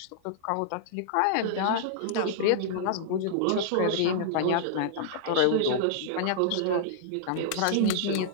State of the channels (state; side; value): different; both; correlation -0.01